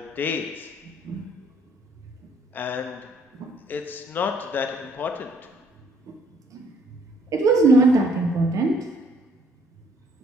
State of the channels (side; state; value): both; normal; correlation 0.63